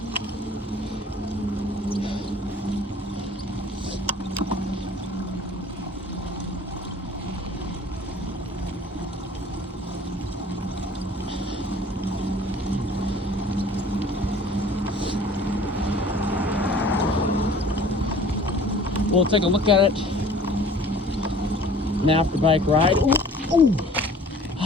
We'll take a look at it. An after bike ride. Ooh, ooh.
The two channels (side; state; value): both; normal; correlation 0.48